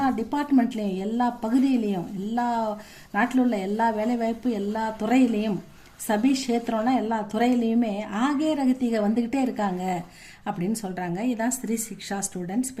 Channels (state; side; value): identical; both; correlation 1.00